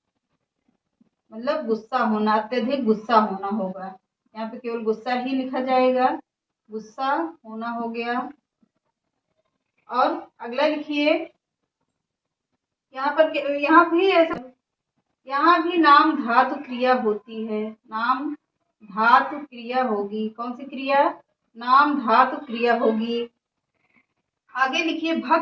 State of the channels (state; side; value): identical; both; correlation 1.00